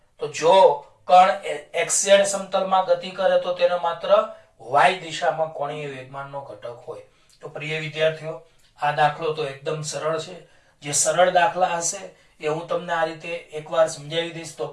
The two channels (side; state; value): both; identical; correlation 1.00